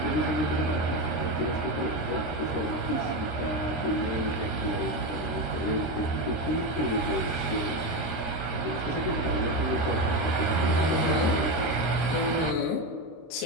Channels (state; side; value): late; right; 26 ms